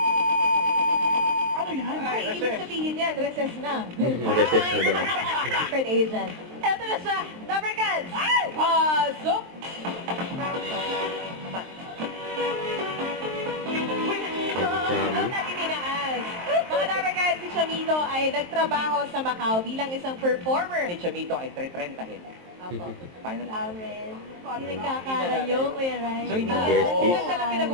Ano yan? ay, ibig sabihin yan, recess na. Mag-assess na daw. Secret agent. Eto na siya, Lover Cats! Pasok! Chami. Natin tinaas. Mga Lover Cats, si Chamito ay nagtrabaho sa Macau bilang isang performer. Si Chamito ay 330. Apo. Final Amen. Hindi nagkakalayo, Kuya Rai. So, hindi Besties. Ito na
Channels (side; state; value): left; late; 23 ms